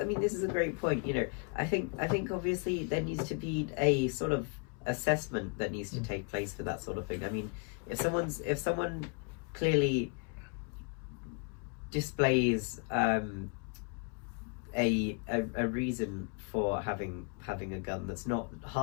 a great point. You know, I think obviously there needs to be a sort of assessment that needs to take place for that sort of thing. I mean, if someone clearly displays a reason for having a gun that's not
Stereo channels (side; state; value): right; quieter; 37.1 dB